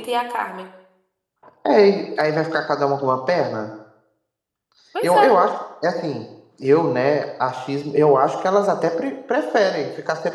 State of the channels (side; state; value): both; identical; correlation 1.00